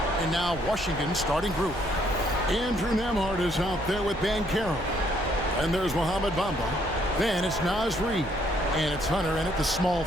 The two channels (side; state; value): right; noise; rumble, 14 dB below the sound